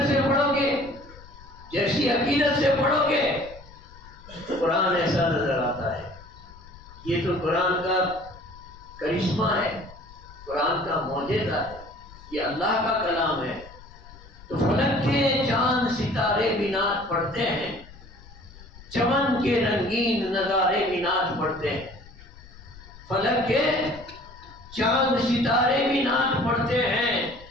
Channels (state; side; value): noise; left; rumble, 20 dB below the sound